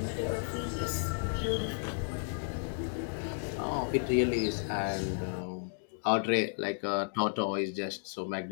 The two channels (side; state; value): right; silent; digital silence